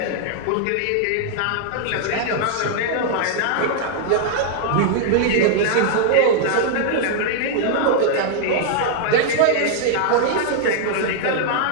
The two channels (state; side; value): different; both; correlation -0.01